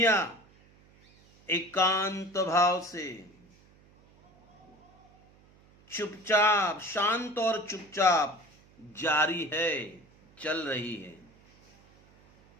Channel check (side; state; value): right; noise; hum, 28 dB below the sound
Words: एकांत भाव से चुपचाप, शांत और चुपचाप जारी है, चल रही है।